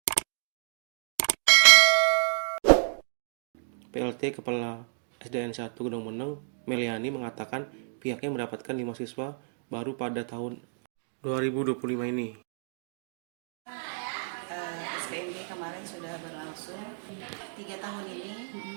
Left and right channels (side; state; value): left; silent; digital silence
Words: PLT Kepala SDN 1 Gunung Meneng, Meliani, mengatakan pihaknya mendapatkan 5 siswa baru pada tahun 2025 ini. SPMB kemarin sudah berlangsung 3 tahun